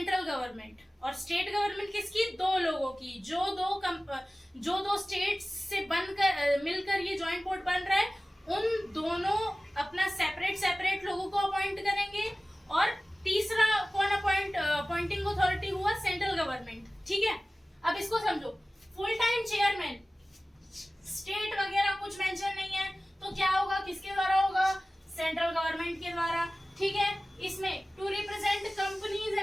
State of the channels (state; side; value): normal; both; correlation 0.97